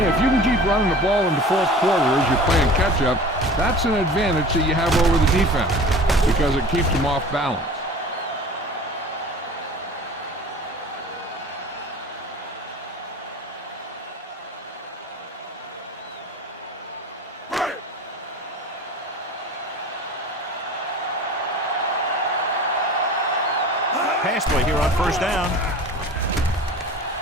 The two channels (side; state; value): both; normal; correlation 0.40